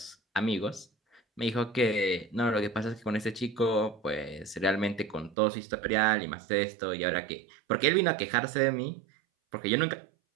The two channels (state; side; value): drops out; left; at 5.4 s